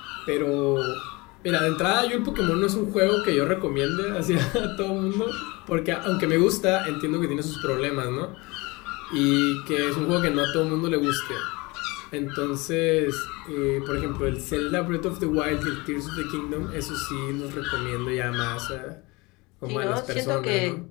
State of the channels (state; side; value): quieter; right; 24.6 dB